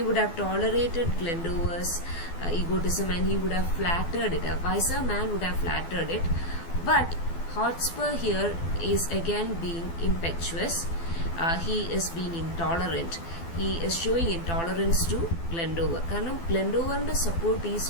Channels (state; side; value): late; right; 12 ms